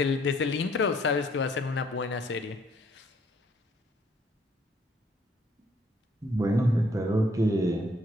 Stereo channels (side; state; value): both; normal; correlation 0.65